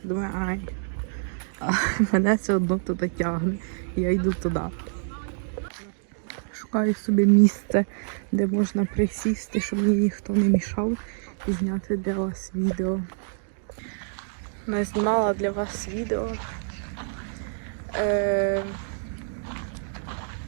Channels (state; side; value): silent; left; digital silence